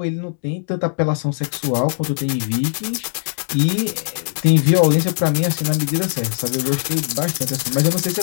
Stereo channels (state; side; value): silent; right; digital silence